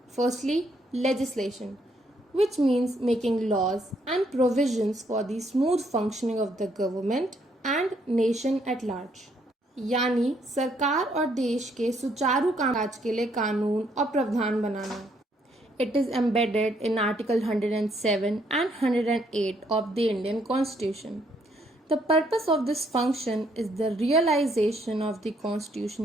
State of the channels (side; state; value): both; normal; correlation 0.70